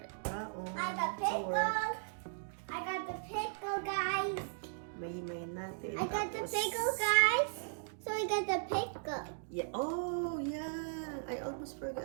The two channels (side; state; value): left; silent; digital silence